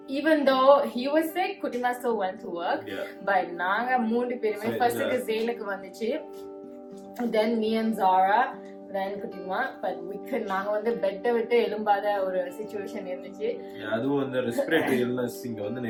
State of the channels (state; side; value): identical; both; correlation 1.00